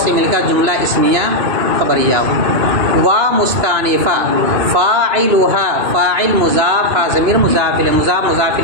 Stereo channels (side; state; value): left; late; 2.9 ms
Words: سے مل کر جملہ اسمیہ خبریہ. وا مستانفہ فاعلها فاعل مضاف ہا ضمیر مضاف الیہ، مضاف مضاف